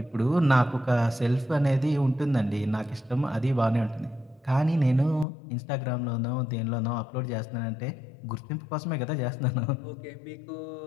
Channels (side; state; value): right; drops out; at 5.2 s